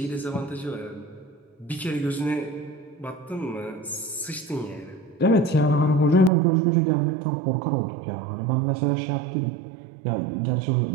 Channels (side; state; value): left; drops out; at 6.3 s